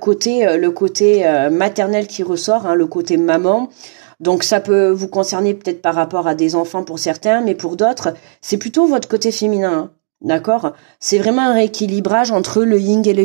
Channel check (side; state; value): left; silent; digital silence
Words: maternel qui ressort, hein, le côté maman. Donc, ça peut vous concerner peut-être par rapport à des enfants pour certains, mais pour d'autres, c'est plutôt votre côté féminin. Hein, d'accord? C'est vraiment un rééquilibrage entre le yin et le